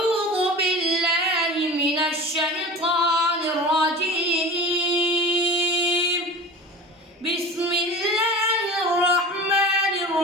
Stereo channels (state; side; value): normal; both; correlation 0.35